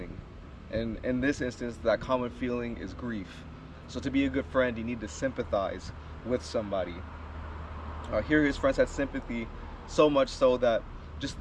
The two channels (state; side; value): identical; both; correlation 1.00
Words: and in this instance, that common feeling is grief. So to be a good friend, you need to sympathize with somebody. Here his friends had sympathy, so much so that just